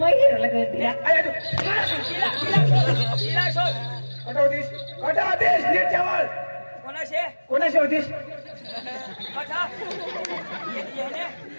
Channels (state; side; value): inverted; both; correlation -1.00